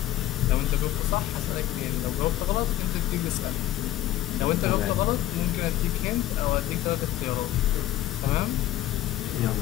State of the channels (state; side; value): quieter; right; 14.0 dB